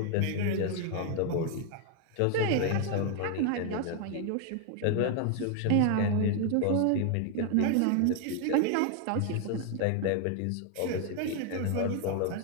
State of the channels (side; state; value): both; different; correlation 0.01